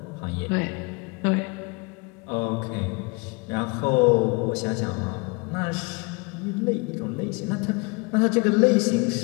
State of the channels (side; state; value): right; quieter; 28.8 dB